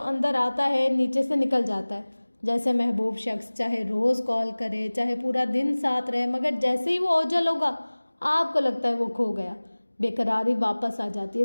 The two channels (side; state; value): both; inverted; correlation -1.00